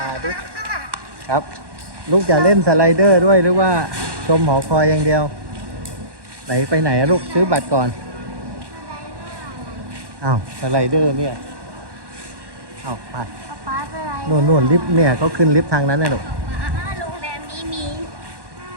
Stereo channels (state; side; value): late; left; 1.1 ms